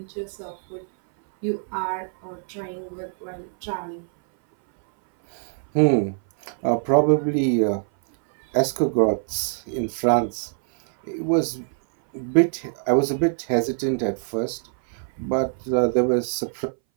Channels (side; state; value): left; silent; 60 dB below the other